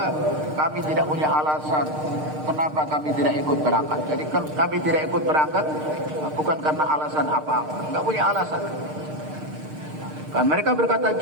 kami tidak punya alasan kenapa kami tidak ikut berangkat. Jadi kami tidak ikut berangkat bukan karena alasan apa-apa, nggak punya alasan. Kan mereka berkata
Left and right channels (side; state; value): left; late; 6.5 ms